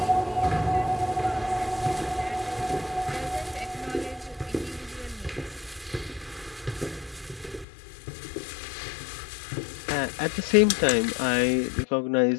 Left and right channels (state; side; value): drops out; right; at 7.7 s